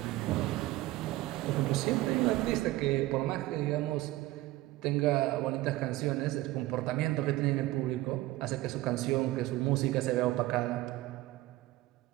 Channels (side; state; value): left; quieter; 17.5 dB